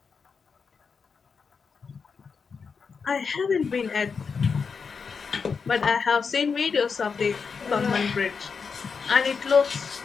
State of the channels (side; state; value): right; quieter; 5.5 dB